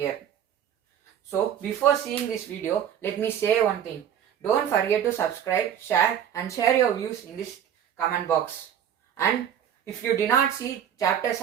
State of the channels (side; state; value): left; quieter; 9.4 dB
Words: So before seeing this video, let me say one thing. Don't forget to subscribe, share and share your views in this comment box. And if you did not see chapter